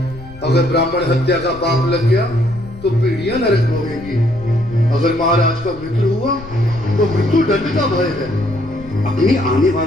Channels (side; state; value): left; noise; rumble, 17 dB below the sound